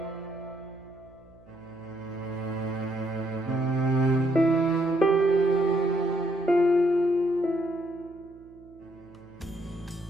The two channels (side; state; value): right; noise; hum, 26 dB below the sound